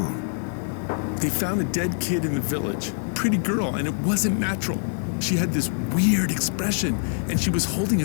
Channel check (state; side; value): silent; right; 62 dB below the other